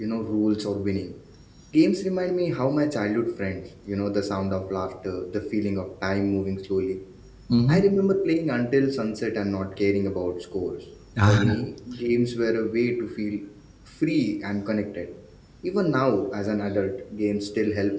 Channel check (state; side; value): identical; both; correlation 1.00